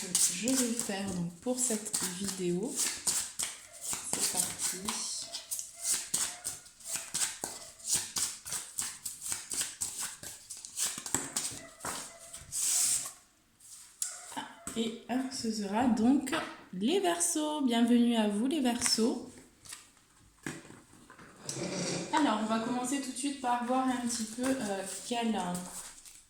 je vais faire donc, pour cette vidéo. C'est parti. Et ce sera donc les Verseaux. Bienvenue à vous les Verseaux. Alors, on va commencer tout de suite par voir un petit peu quelle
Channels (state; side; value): identical; both; correlation 1.00